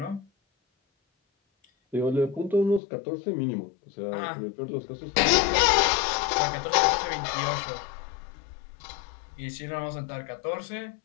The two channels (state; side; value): drops out; right; at 2.8 s